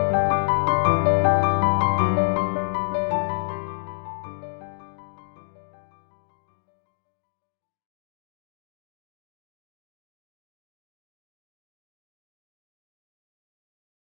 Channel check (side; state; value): right; silent; digital silence